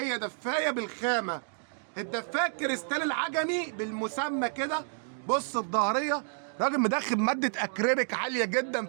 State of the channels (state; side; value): silent; left; digital silence